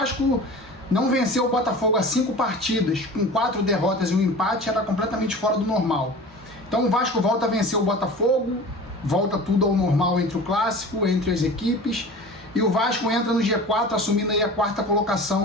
não venceu o Botafogo há 5 partidas, com 4 derrotas e um empate, era completamente fora do normal. Então o Vasco volta a vencer o Botafogo, volta tudo ao normal entre o clássico, entre as equipes, e o Vasco entra no G4 assumindo aí a 4ª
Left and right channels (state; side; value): normal; both; correlation 0.38